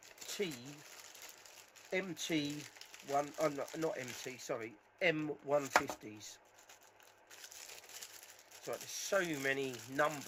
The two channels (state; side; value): identical; both; correlation 1.00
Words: M150s. So there's so many